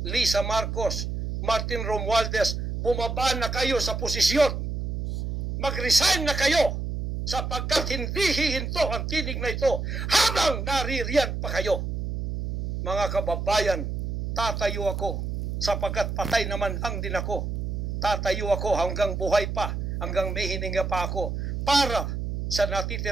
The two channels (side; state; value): right; noise; hum, 3 dB below the sound